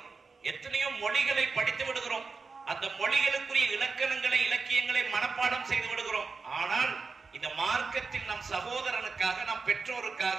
எத்தனையோ மொழிகளை படித்து விடுகிறோம், அந்த மொழிகளுக்குரிய இலக்கணங்களை, இலக்கியங்களை மனப்பாடம் செய்து விடுகிறோம். ஆனால் இந்த மார்க்கத்தில் நம் சகோதரனுக்காக, நம் பெற்றோருக்காக,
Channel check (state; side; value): quieter; left; 4.5 dB